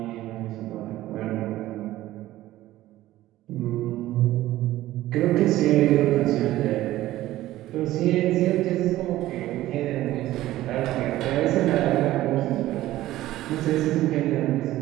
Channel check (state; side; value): quieter; left; 15.4 dB